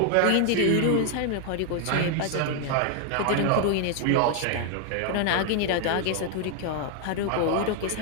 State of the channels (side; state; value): both; different; correlation 0.00